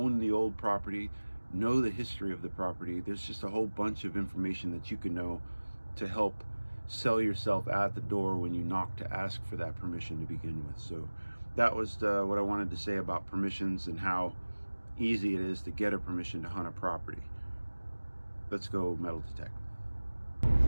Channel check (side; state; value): both; inverted; correlation -1.00